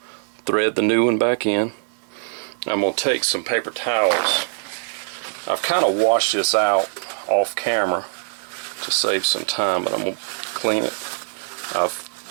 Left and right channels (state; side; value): silent; left; 64 dB below the other